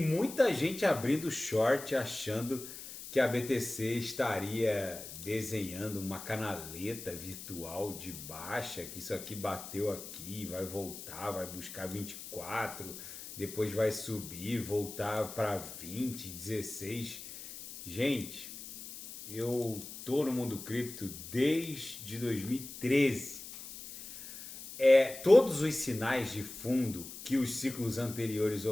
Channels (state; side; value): noise; left; hiss, 12 dB below the sound